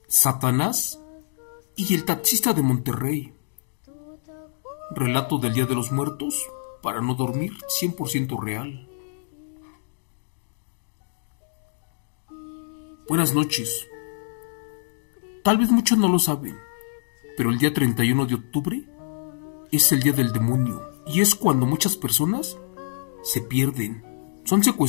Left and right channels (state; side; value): silent; right; digital silence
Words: Satanás y el taxista de Monterrey. Relato del Día de los Muertos para no dormir, 100% real. Buenas noches. Tal vez muchos no lo saben, pero el día 31 de octubre es el día del demonio y es cuando muchas personas se pierden, son